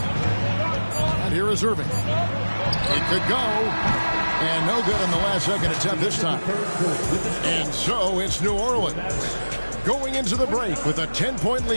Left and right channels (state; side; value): inverted; both; correlation -1.00